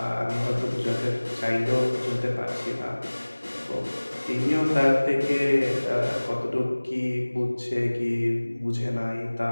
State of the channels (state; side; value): inverted; both; correlation -1.00